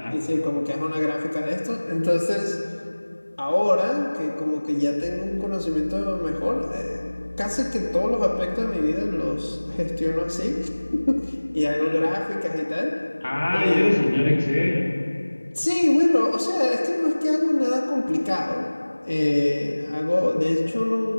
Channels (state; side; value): inverted; both; correlation -1.00